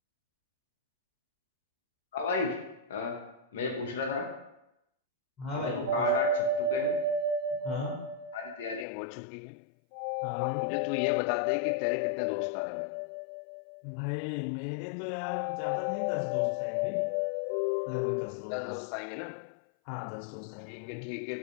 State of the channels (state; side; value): drops out; right; at 8.8 s